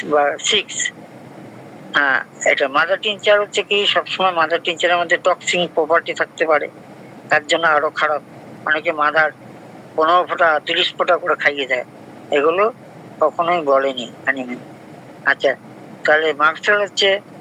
বা 6, হ্যাঁ এটা মাদার টিনচার হচ্ছে কি, সবসময় মাদার টিনচারের মধ্যে টক্সিন প্রপার্টি থাকতে পারে, তার জন্য আরো খারাপ। অনেকে মাদার 15 ফোঁটা 30 ফোঁটা করে খাইয়ে দেয়, এগুলো কখনোই বলেনি অ্যানিমেল। আচ্ছা, তাহলে মার্কসেল হচ্ছে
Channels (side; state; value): both; identical; correlation 1.00